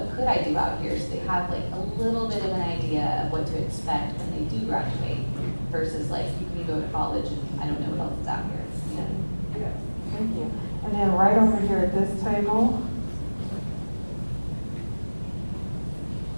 could I do out here? So they have like a little bit of an idea of what to expect when they do graduate versus like you can go to college and I don't know what else is out here. You know? Yes, thank you. And then right over here at this table.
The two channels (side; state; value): both; inverted; correlation -1.00